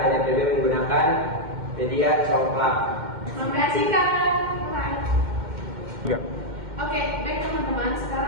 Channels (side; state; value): left; late; 2.1 ms